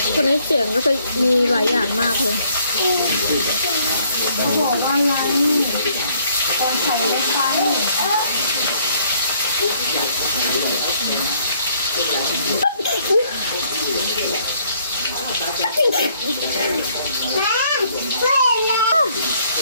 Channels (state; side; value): inverted; both; correlation -0.66